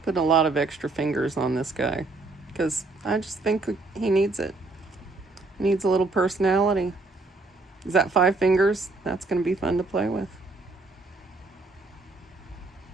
a lot of extra fingers on this guy because I just think he needs it. He needs a little personality. Is that 5 fingers? That's going to be fun to play with.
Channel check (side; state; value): left; quieter; 3.4 dB